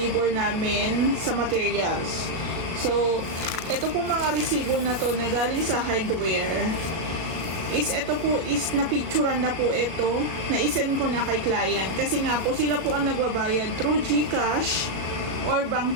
namin sa materials. So, ito po mga resibo na to na galing sa hardware. Ito po is napicturan na po ito, na isend ko na kay client. Kasi nga po, sila po ang nagbabayad through GCash or bank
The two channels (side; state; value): left; late; 37 ms